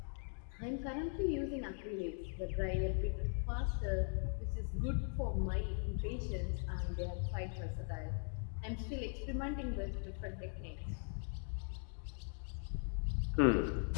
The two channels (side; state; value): right; silent; 51 dB below the other